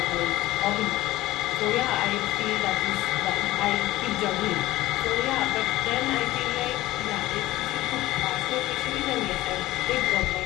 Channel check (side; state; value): right; quieter; 16.9 dB